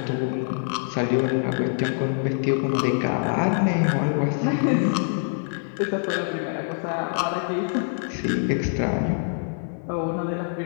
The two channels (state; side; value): silent; right; digital silence